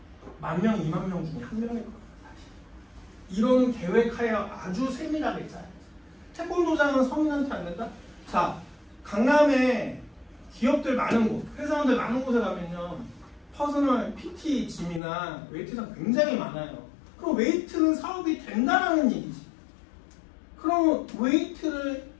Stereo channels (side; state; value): right; drops out; at 15.0 s